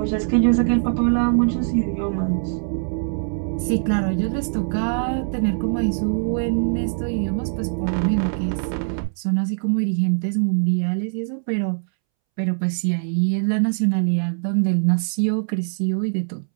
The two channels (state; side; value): silent; left; 64 dB below the other